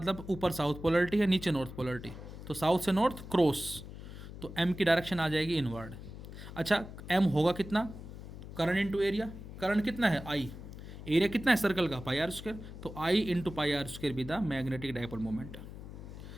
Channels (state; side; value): noise; left; hum, 12 dB below the sound